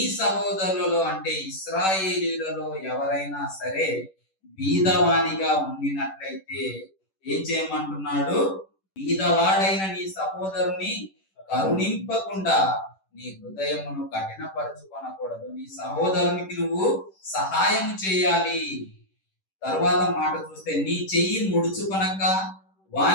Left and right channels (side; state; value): right; late; 10 ms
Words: సహోదరులలో అంటే ఇశ్రాయేలీయులలో ఎవరైనా సరే బీదవానిగా ఉండినట్లయితే ఏం చేయమంటున్నాడు? బీదవాడైన నీ సహోదరుని కరుణింపకుండా నీ హృదయమును కఠినపరచుకొనకూడదు. నీ సహోదరునికి నువ్వు సహాయం చేయాలి. తర్వాత మాట చూస్తే, నీ చెయ్యి ముడుచుకొనక